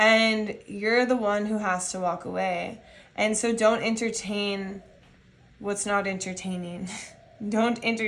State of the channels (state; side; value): identical; both; correlation 1.00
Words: you're the one who has to walk away. And so don't entertain what's not entertaining. Don't